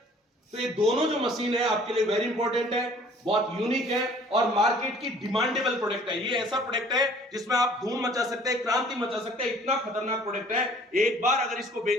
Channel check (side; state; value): both; normal; correlation 0.53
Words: तो ये दोनों जो मशीन है आपके लिए वेरी इंपॉर्टेंट है, बहुत यूनिक है और मार्केट की डिमांडेबल प्रोडक्ट है। ये ऐसा प्रोडक्ट है जिसमें आप धूम मचा सकते हैं, क्रांति मचा सकते हैं। इतना खतरनाक प्रोडक्ट है, एक बार अगर इसको